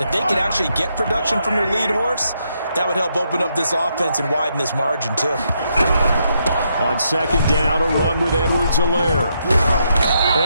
If they could actually get production from their lead horse, that would help open up this offense and widen this margin, too. On second down, a run with Edwards-Helaire.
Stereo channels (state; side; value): inverted; both; correlation -0.78